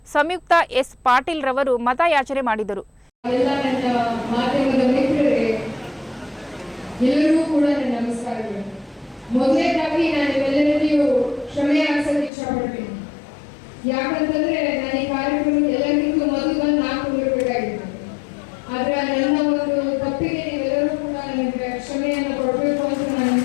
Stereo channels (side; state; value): right; drops out; at 12.3 s